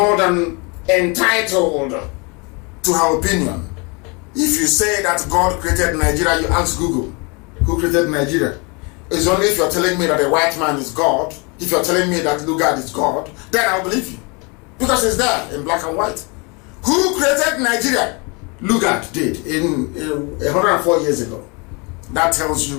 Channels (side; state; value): right; quieter; 30.5 dB